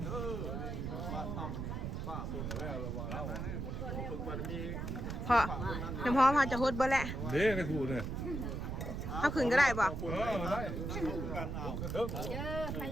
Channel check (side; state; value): right; noise; rumble, 4 dB below the sound